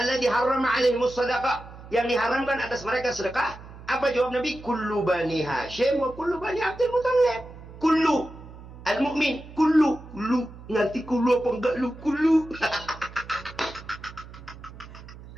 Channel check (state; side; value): noise; right; hum, 16 dB below the sound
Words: harrama alaihimus shadaqah, yang diharamkan atas mereka sedekah. Apa jawab Nabi? Kullu bani Hashim wa kullu bani Abdul Muttalib. Kullu al-mu'min, kullu. Nanti kullu apa enggak lu? Kullu.